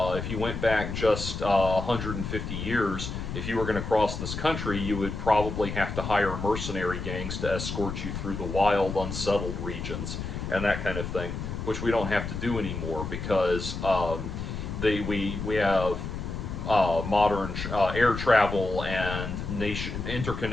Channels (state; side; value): noise; left; rumble, 5 dB below the sound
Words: if you went back just 150 years, if you were going to cross this country, you would probably have to hire mercenary gangs to escort you through the wild, unsettled regions and that kind of thing, which we don't have to do anymore because we have modern air travel and